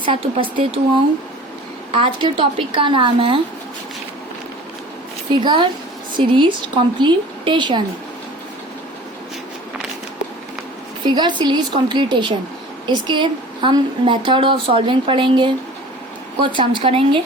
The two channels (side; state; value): both; normal; correlation 0.43